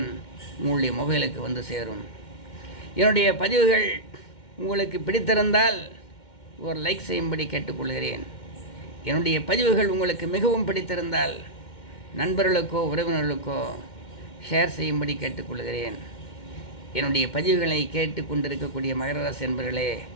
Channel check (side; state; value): right; late; 2.1 ms